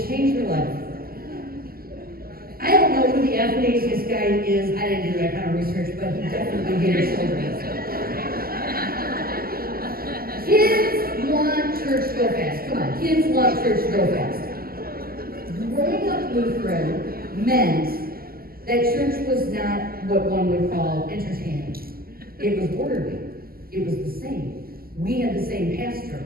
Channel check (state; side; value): late; left; 0.43 ms